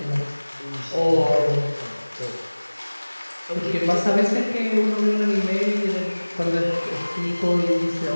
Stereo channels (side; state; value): both; inverted; correlation -1.00